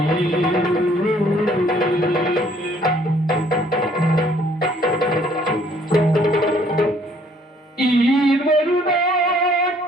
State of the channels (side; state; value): both; normal; correlation 0.61